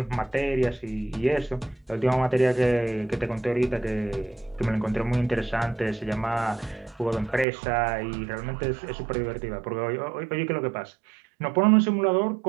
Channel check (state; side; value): drops out; left; at 7.5 s